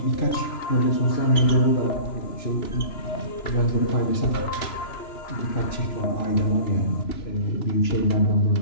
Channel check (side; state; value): right; late; 2.9 ms